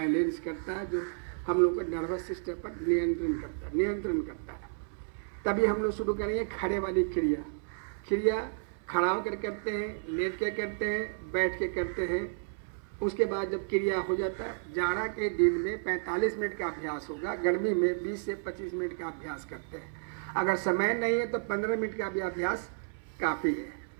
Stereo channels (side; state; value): left; silent; 57 dB below the other